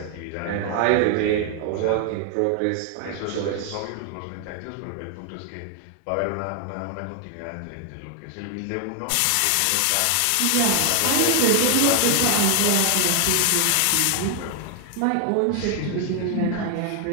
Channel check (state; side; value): different; both; correlation 0.00